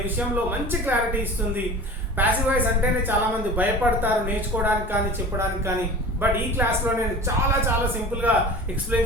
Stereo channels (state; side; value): normal; both; correlation 0.37